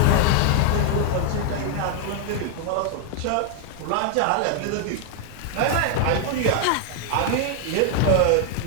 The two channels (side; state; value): both; different; correlation 0.00